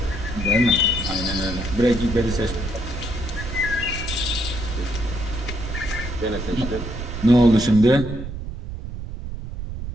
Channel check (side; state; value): right; noise; rumble, 7 dB below the sound